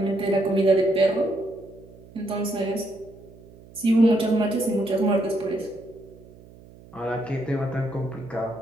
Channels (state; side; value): noise; right; hum, 22 dB below the sound